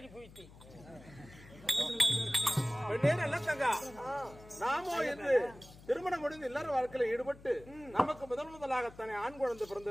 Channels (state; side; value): noise; left; hum, 20 dB below the sound